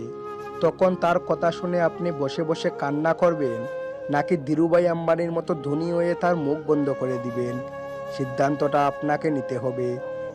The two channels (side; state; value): both; identical; correlation 1.00